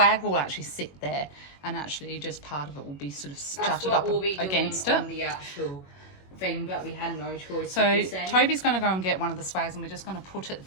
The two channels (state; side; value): late; right; 21 ms